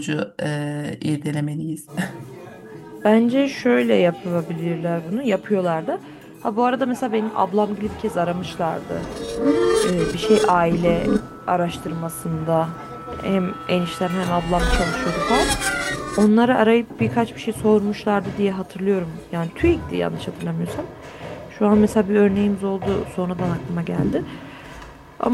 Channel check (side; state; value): both; identical; correlation 1.00